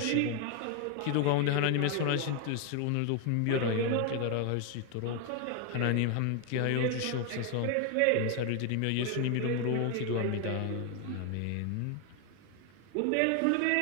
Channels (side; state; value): both; different; correlation 0.01